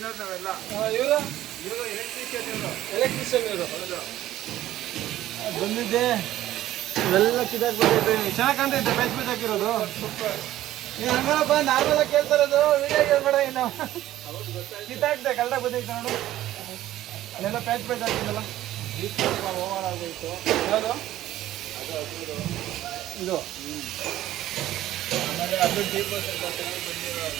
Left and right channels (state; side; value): quieter; left; 14.0 dB